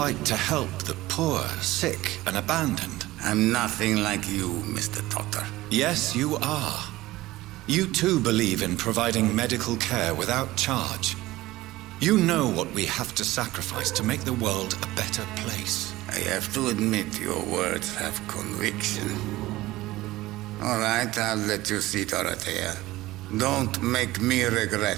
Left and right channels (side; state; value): left; quieter; 17.7 dB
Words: to help the poor, sick, and abandoned. I'm nothing like you, Mr. Trotter. Yes, you are. You too believe in providing medical care without charge. You know what we have to sacrifice to make the world a better place. I have to admit your words have conviction. All right, I'll let you see, Dorothea. Don't make me